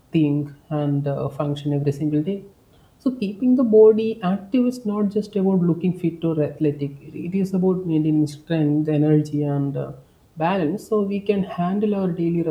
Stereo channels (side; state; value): both; identical; correlation 1.00